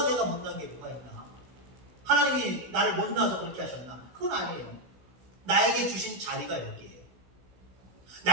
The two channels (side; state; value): left; late; 16 ms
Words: 내가 못난 게 뭐가 있나? 하나님이 나를 못나서 그렇게 하셨나? 그건 아니에요. 나에게 주신 자리가 여기에요.